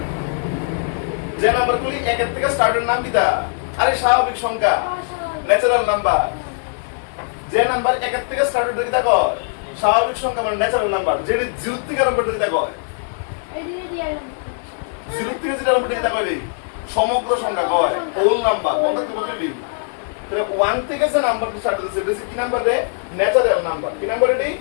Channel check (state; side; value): silent; right; 66 dB below the other